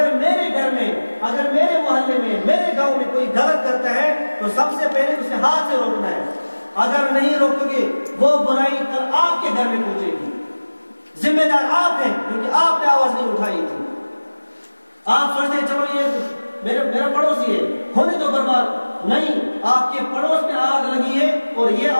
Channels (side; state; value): both; inverted; correlation -1.00